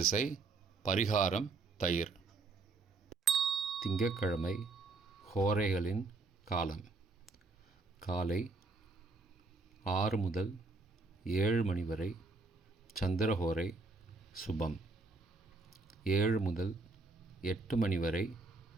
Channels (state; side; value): quieter; left; 3.8 dB